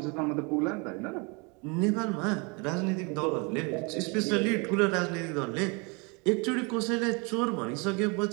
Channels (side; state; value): left; quieter; 30.8 dB